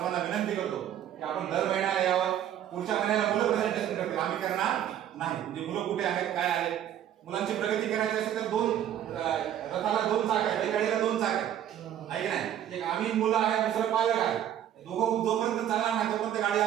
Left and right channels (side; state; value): left; quieter; 10.8 dB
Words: विनंती करतो की आपण दर महिन्याला यावं. पुढच्या महिन्याला मुलं प्रेझेंटेशन करतील आम्ही करणार नाही. म्हणजे मुलं कुठे आहेत काय आहेत. मुलांची प्रगती करायची असेल तर रथाला 2 चाक आहेत, बैलगाडीला 2 चाक आहेत आहे की नाही. एक आम्ही मुलं आहे दुसरं पालक आहे. दोघं जोपर्यंत चालणार नाही तोपर्यंत गाडी